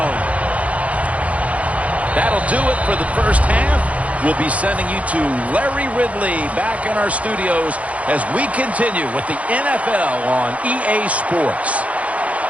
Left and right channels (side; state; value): left; late; 0.065 ms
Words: That'll do it for the first half. We'll be sending you to Larry Ridley back in our studios as we continue with the NFL on EA Sports.